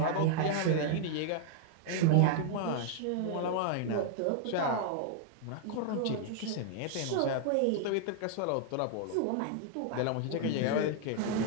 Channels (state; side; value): different; both; correlation 0.00